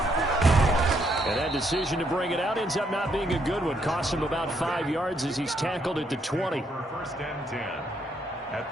And that decision to bring it out ends up not being a good one. Costs him about 5 yards as he's tackled at the 20. First and 10 at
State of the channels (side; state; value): both; normal; correlation 0.73